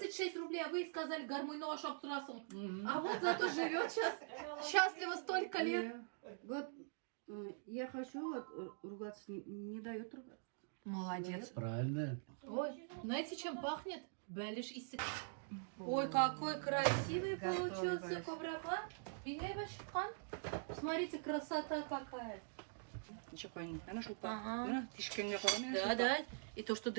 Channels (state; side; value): silent; left; digital silence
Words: рублей, а вы сказали гармонь нож обтрасом. А вот зато живет сейчас счастливо столько лет. Вот я хочу вот ругаться, не дает ругаться. Молодец. Правильно. Ой, знаете, чем пахнет? Бэлиш и Ой, какой красивый Готовый, получился Галь. коврокла. Смотрите, красота какая. Ничего қойын. Ана шулпа. Ага. Міне, тишкенге қорамын. Да, да. И то, что